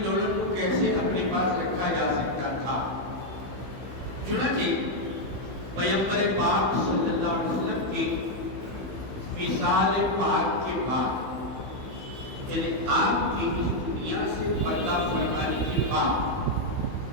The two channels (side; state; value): left; late; 15 ms